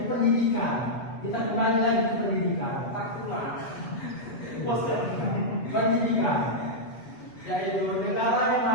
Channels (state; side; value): late; right; 7.8 ms